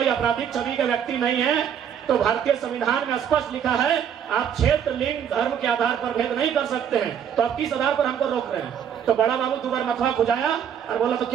आपराधिक छवि के व्यक्ति नहीं है तो भारतीय संविधान में स्पष्ट लिखा है आप क्षेत्र, लिंग, धर्म के आधार पर भेद नहीं कर सकते हैं, तो आप किस आधार पर हमको रोक रहे हैं? तो बड़ा बाबू 2 बार मथुआ खुजाया और बोला तो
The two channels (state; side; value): quieter; left; 8.5 dB